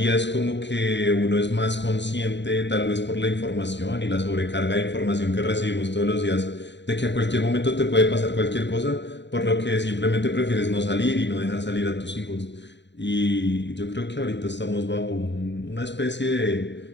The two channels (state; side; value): late; right; 0.52 ms